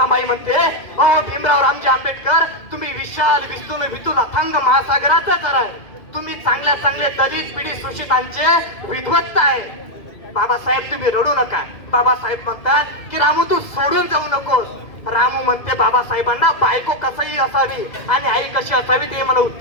म्हणते, अहो भीमराव रामजी आंबेडकर, तुम्ही विशाल विस्तृत विपुल अथांग महासागराचा तर आहे. तुम्ही चांगल्या दलित पिढी शोषितांचे विद्वत्ता आहे. बाबासाहेब तुम्ही रडू नका. बाबासाहेब म्हणतात की रामू तू सोडून जाऊ नकोस. रामू म्हणते बाबासाहेबांना बायको कसंही असावी आणि आई कशी असावी ते मला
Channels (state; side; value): late; right; 2.2 ms